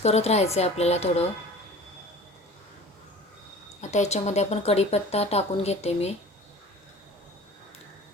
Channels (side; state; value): both; normal; correlation 0.42